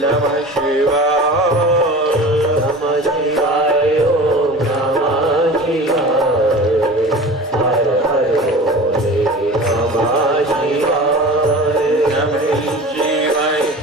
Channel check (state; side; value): normal; both; correlation 0.36